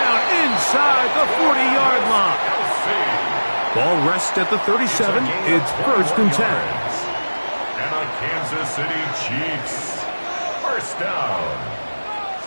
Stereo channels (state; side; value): inverted; both; correlation -1.00